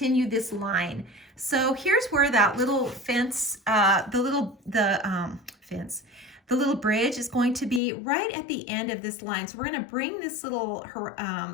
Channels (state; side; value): drops out; right; at 7.8 s